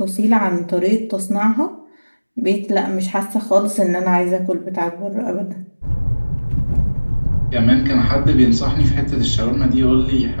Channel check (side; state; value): both; inverted; correlation -1.00